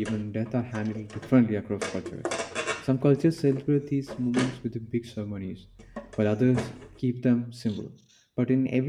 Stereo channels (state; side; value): identical; both; correlation 1.00